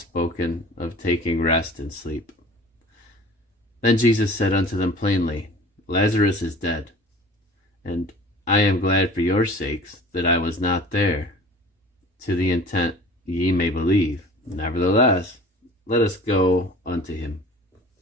of taking rest and sleep. Then Jesus said unto them plainly, Lazarus is dead, and I am glad for your sakes that I was not there, to the intent ye may believe. Nevertheless, let us go unto him.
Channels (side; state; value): both; normal; correlation 0.44